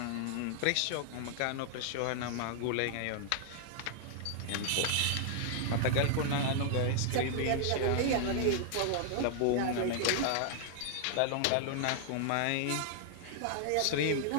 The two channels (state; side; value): different; both; correlation -0.01